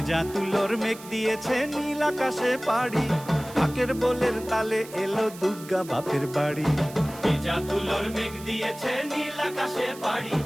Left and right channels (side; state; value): right; noise; hiss, 17 dB below the sound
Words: তুলোর মেঘ দিয়েছে নীল আকাশে পাড়ি, ঢাকের বোলের তালে এলো দুর্গা বাপের বাড়ি। ভেজা তুলোর মেঘ দিয়েছে নীল আকাশে পাড়ি,